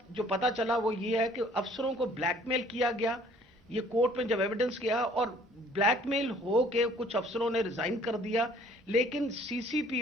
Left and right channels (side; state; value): both; normal; correlation 0.57